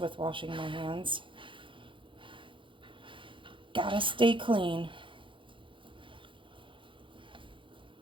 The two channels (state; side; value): late; left; 0.24 ms